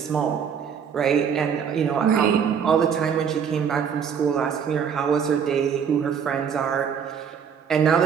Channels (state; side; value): quieter; left; 7.3 dB